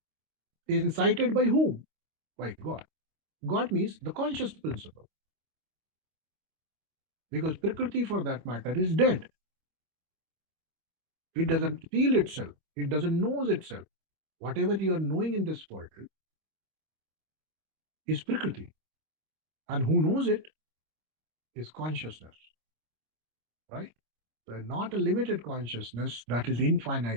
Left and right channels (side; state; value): left; late; 26 ms